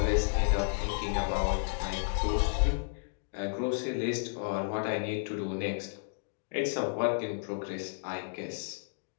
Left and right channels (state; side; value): silent; right; digital silence